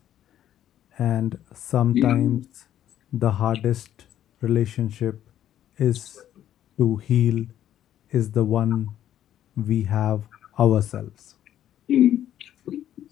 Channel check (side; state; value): right; quieter; 11.3 dB